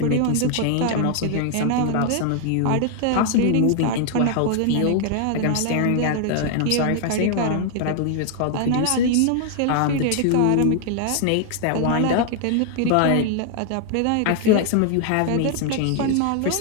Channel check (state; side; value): different; both; correlation 0.00